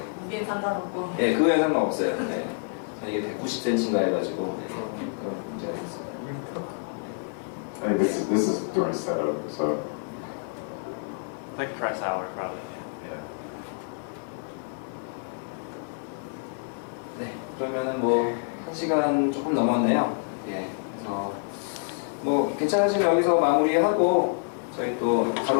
무게는 상관없고. 그거에 상관없어요. 이게 190cm인가 해가지고 그런 문제가 있어요. Hey, this is during setup, so Like press hour, probably. yeah. 네, 그러면은 1시간 조금 넘었네요. 그래서 괜찮으시면 여기서 마무리하고 저희 또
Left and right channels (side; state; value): right; silent; 60 dB below the other